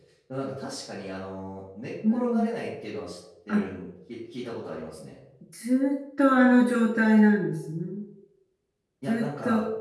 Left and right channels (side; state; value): both; identical; correlation 1.00